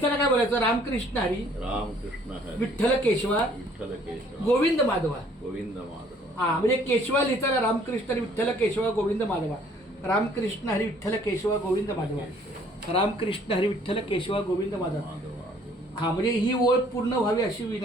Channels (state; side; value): normal; both; correlation 0.59